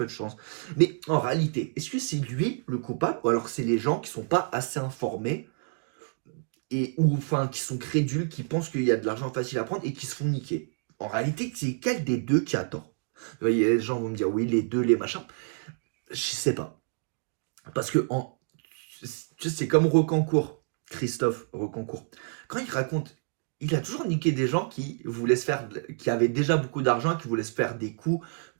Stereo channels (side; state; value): left; silent; 59 dB below the other